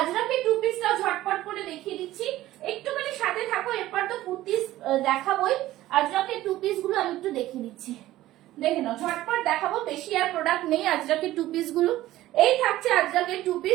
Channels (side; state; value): left; quieter; 15.4 dB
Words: 2 পিসটাও ঝটপট করে দেখিয়ে দিচ্ছি, একটুখানি সাথে থাকো, এরপর তো কুর্তিস দেখাবোই, আজরাকে 2 পিস গুলো আমি একটু দেখিয়ে দিচ্ছি, দেখে নাও ঝটপট দেখাবো, বেশি আর প্রোডাক্ট নেই আজরাকে 2 পিস গুলো। এই থাকছে আজরাকে 2